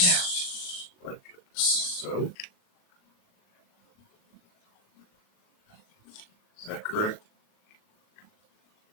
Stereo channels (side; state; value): right; late; 38 ms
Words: now. Like so. Is that correct?